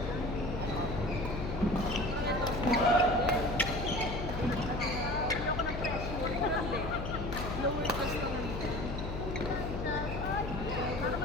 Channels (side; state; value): left; noise; hum, 5 dB below the sound